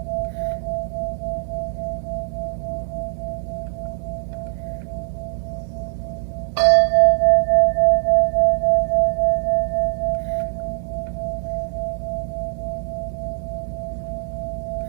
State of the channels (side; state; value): left; silent; digital silence